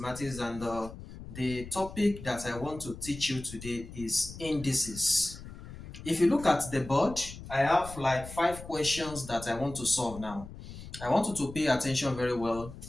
and the topic that I want to teach you today is indices. If you look at the board, I have like 5 questions that I want to solve now. I want you to pay attention very well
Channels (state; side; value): noise; left; rumble, 13 dB below the sound